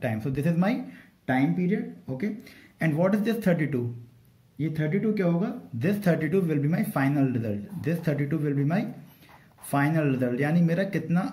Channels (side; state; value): both; identical; correlation 1.00